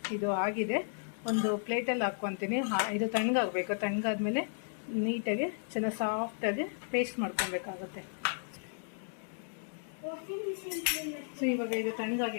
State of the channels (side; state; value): right; silent; digital silence